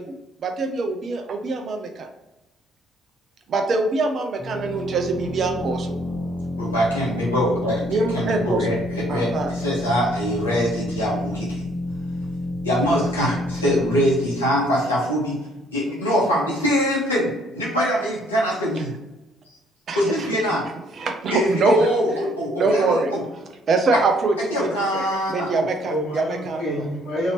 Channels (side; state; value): both; normal; correlation 0.63